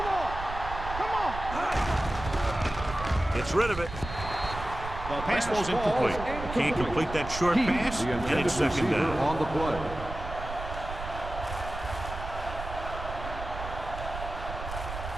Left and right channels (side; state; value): right; noise; rumble, 8 dB below the sound